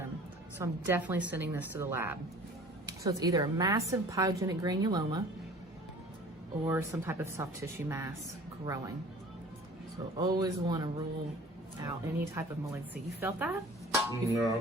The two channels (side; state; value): both; normal; correlation 0.46